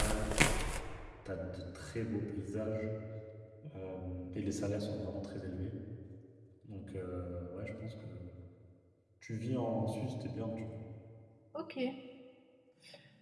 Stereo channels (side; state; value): both; identical; correlation 1.00